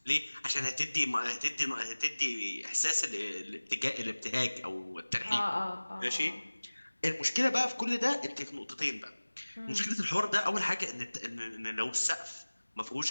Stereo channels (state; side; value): inverted; both; correlation -1.00